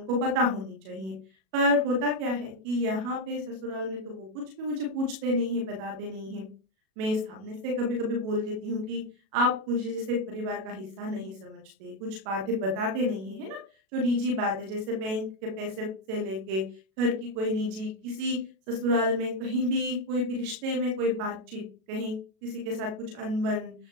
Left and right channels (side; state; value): left; late; 37 ms